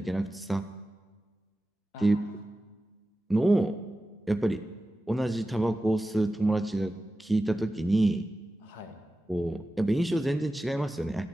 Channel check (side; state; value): both; normal; correlation 0.94